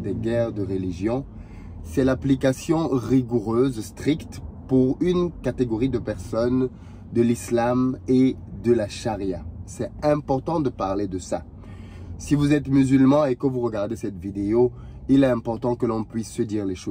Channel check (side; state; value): both; identical; correlation 1.00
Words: des guerres de religion, c'est l'application rigoureuse, stricte, pour une catégorie de personnes de l'islam et de la charia. C'est important de parler de ça. Si vous êtes musulman et que vous regardez cette vidéo, il est important que l'on puisse se dire les